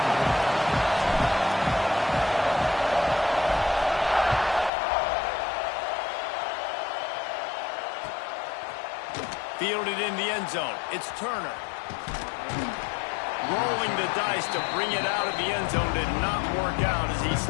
Fielded in the end zone. It's Turner. Rolling the dice to bring it out of the end zone did not work out as he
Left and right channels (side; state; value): right; drops out; at 4.7 s